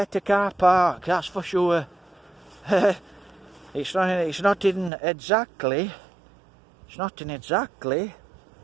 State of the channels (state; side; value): drops out; left; at 4.9 s